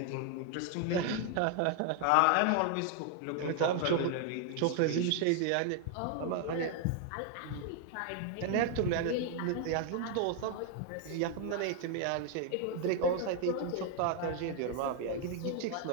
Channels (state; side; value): different; both; correlation 0.00